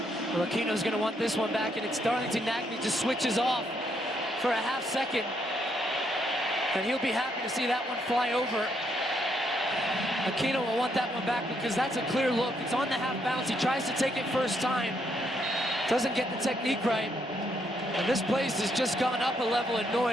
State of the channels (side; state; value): both; normal; correlation 0.75